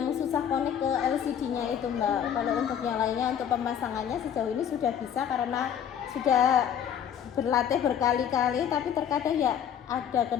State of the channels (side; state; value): right; quieter; 8.9 dB